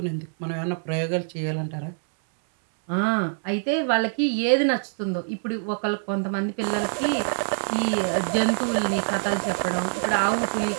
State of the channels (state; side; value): silent; left; 62 dB below the other